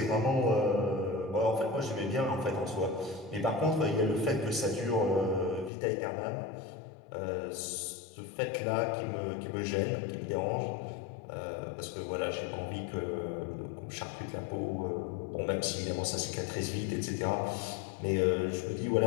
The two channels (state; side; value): drops out; right; at 5.7 s